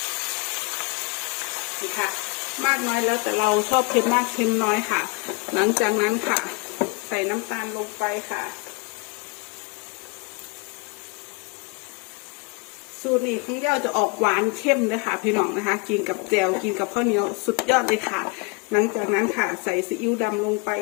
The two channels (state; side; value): quieter; right; 29.7 dB